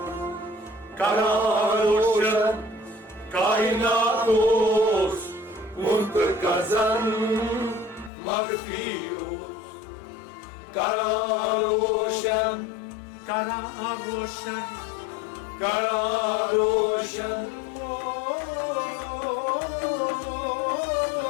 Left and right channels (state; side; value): drops out; right; at 8.1 s